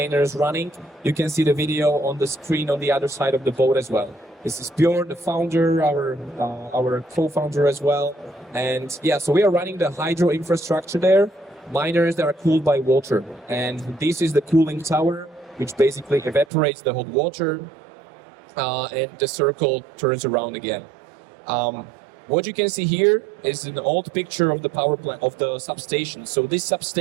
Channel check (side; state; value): left; drops out; at 16.4 s